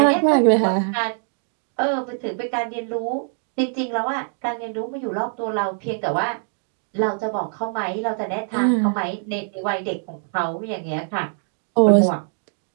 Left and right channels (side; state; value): left; silent; 61 dB below the other